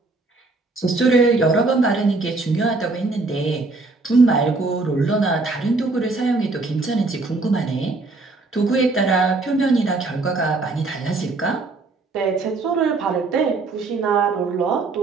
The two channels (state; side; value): quieter; left; 3.5 dB